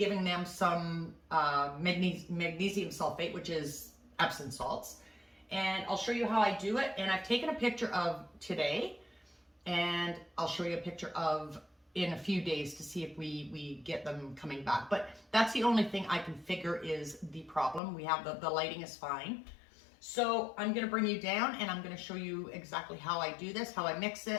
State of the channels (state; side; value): drops out; right; at 17.8 s